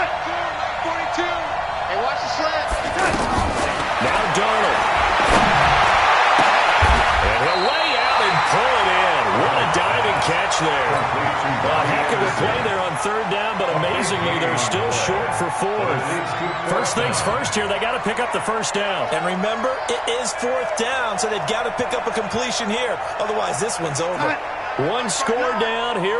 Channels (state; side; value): identical; both; correlation 1.00